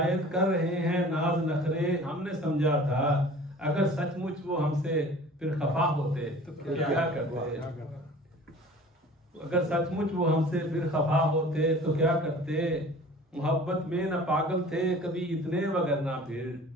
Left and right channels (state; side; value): normal; both; correlation 0.45